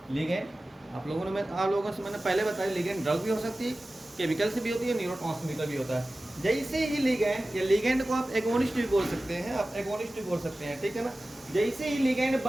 लिगैंड आप लोगों से मैंने पहले बताया, लिगैंड ड्रग भी हो सकती है, केमिकल से भी होती है, न्यूरोट्रांसमीटर भी होता है। जैसे ही लिगैंड, या लिगैंड को आप एगोनिस्ट भी बोल सकते हैं, आप एगोनिस्ट भी बोल सकते हैं, ठीक है ना। जैसे ही लिगैंड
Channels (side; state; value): both; normal; correlation 0.96